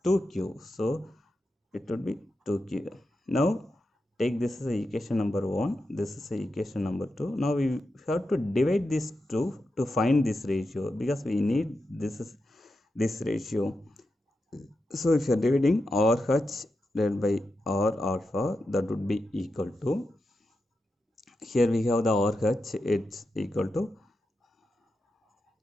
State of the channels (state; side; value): normal; both; correlation 0.89